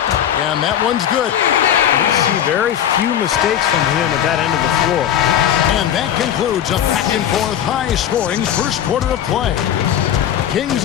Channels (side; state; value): right; quieter; 10.1 dB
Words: and that one's good. You see very few mistakes from him at that end of the floor. And that concludes a back-and-forth high-scoring first quarter of play.